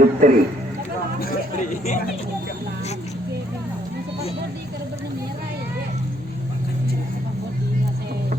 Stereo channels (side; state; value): both; normal; correlation 0.68